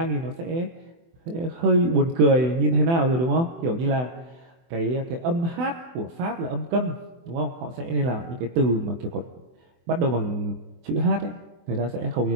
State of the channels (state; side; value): late; left; 24 ms